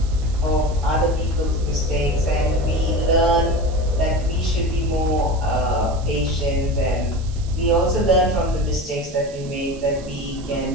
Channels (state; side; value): noise; right; hiss, 21 dB below the sound